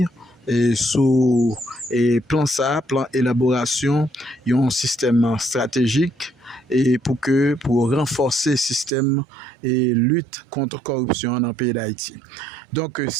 et sous plan élaboration un système stratégique et pour renforcer le système et lutte contre corruption dans le pays d'Haïti. Donc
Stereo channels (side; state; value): left; drops out; at 8.9 s